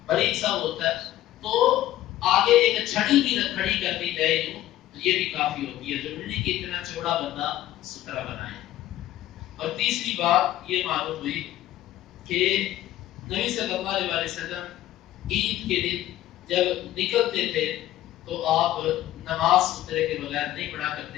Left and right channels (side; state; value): right; quieter; 14.0 dB